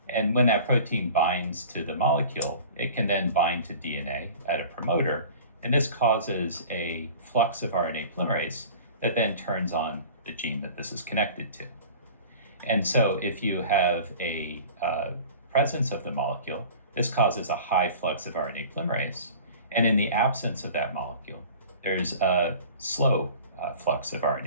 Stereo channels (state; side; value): inverted; both; correlation -0.42